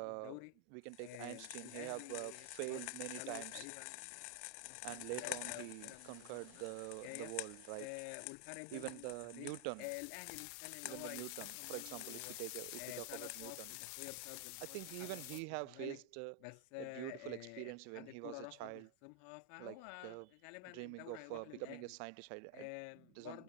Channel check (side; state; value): both; different; correlation 0.00